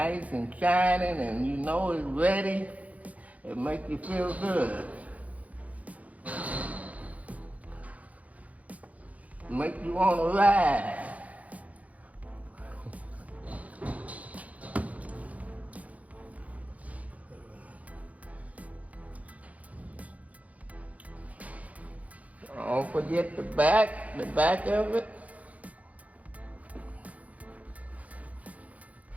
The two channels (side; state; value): left; late; 0.069 ms